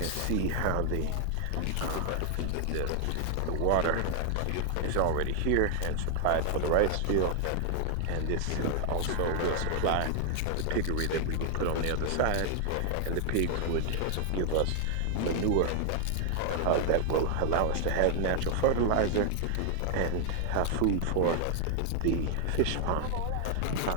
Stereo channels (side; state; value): both; different; correlation 0.00